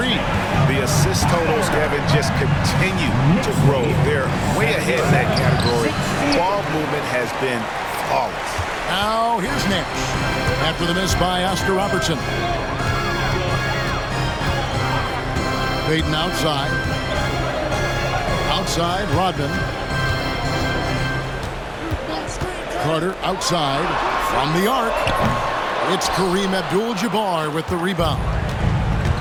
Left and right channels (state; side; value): identical; both; correlation 1.00